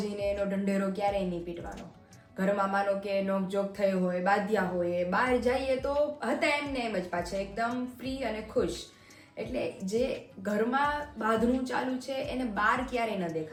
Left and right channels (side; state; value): both; identical; correlation 1.00